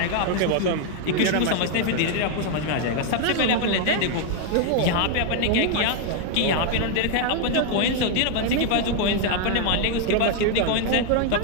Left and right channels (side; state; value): both; different; correlation 0.00